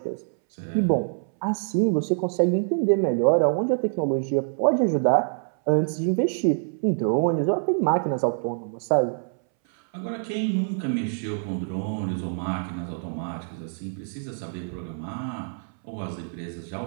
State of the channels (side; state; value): left; silent; 61 dB below the other